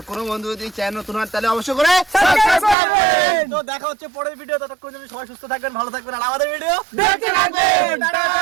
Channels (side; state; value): left; drops out; at 2.8 s